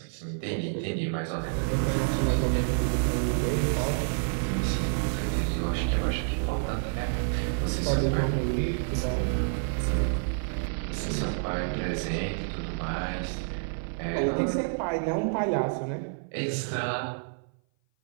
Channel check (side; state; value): left; silent; 57 dB below the other